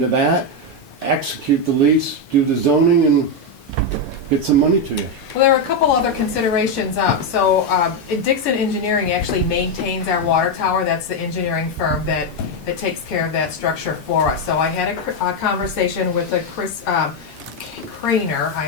that, execute the lease, do the zoning, and get some money to you. Well, there are a couple other considerations up. So Dixon Engineering actually maintains our water tower. That's the engineering firm that takes care of that structure for us. So I had a conversation with Chris Craner,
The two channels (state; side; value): normal; both; correlation 0.05